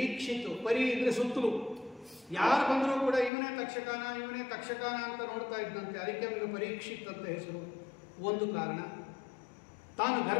ಈಕ್ಷಿತ್ತು. ಪರಿ ಇದ್ರೆ ಸುತ್ತಲೂ ಯಾರು ಬಂದರೂ ಕೂಡ ಇವನೇ ತಕ್ಷಕನ ಅಂತ ನೋಡ್ತಾ ಇದ್ದಂತೆ. ಅದಕ್ಕೆ ಅವನಿಗೆ ಪರೀಕ್ಷಿತ್ ಅಂತ ಹೆಸರು. ಒಂದು ಕಾರಣ. ತಾನು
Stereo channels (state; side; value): drops out; right; at 3.3 s